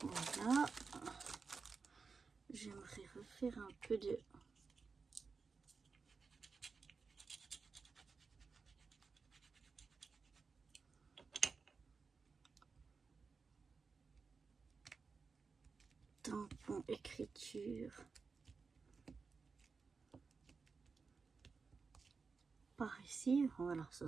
voilà, j'aimerais refaire un peu de tampon écriture par ici. Voilà, ça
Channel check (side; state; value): left; quieter; 4.8 dB